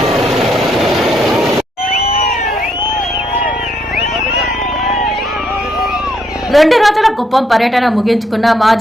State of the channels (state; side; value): normal; both; correlation 0.74